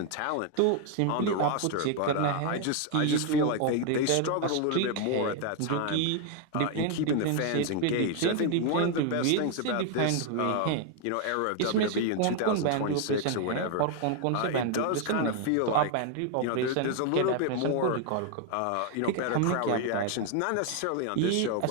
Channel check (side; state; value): both; different; correlation 0.00